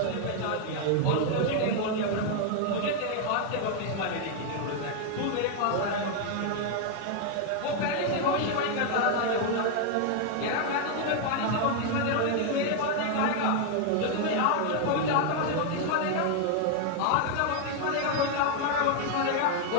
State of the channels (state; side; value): different; both; correlation 0.00